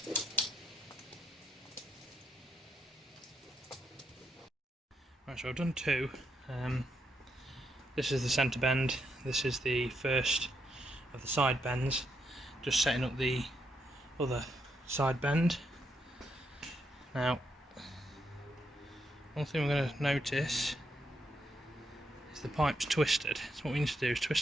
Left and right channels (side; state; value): both; normal; correlation 0.79